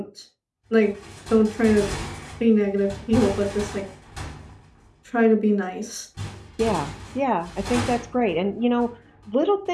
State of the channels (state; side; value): identical; both; correlation 1.00